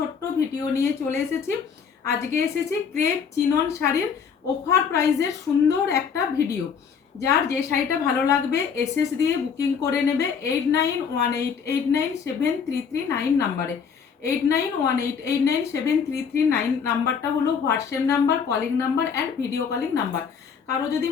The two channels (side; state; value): right; quieter; 6.5 dB